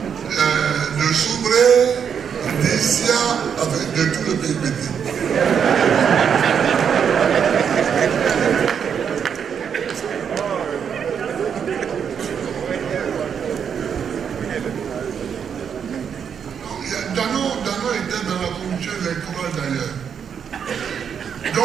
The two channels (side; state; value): left; quieter; 7.5 dB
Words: de Corée, d'Asia, avec de tout le pays petit. Dano était dans la commission électorale d'ailleurs.